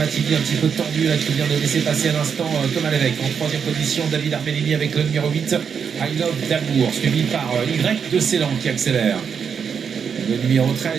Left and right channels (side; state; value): left; quieter; 6.8 dB